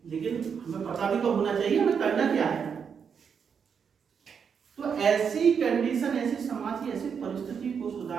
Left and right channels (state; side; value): quieter; left; 6.8 dB